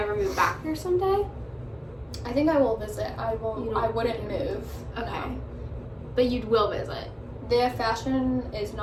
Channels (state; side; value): identical; both; correlation 1.00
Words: move back here someday? I think I will visit. I wouldn't move. Okay. No. But you will visit. Their fashion is